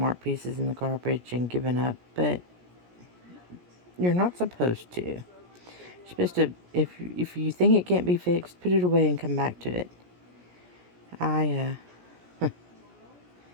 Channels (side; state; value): left; late; 17 ms